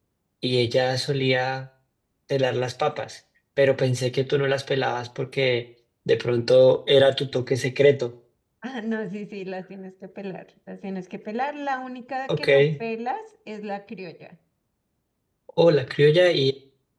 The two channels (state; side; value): identical; both; correlation 1.00